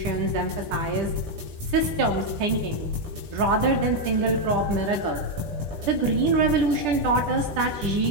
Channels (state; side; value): late; left; 10 ms